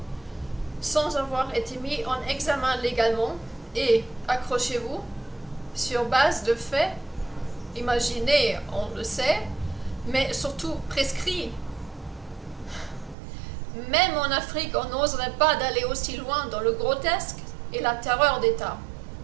sans avoir été mis en examen légalement et, accrochez-vous, sur base de faits, imaginés, on le sait, mais surtout prescrits. Même en Afrique, on n'oserait pas d'aller aussi loin dans le grotesque et la terreur d'État.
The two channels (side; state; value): left; drops out; at 13.2 s